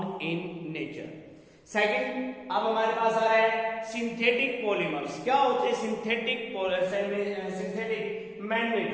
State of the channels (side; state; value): both; identical; correlation 1.00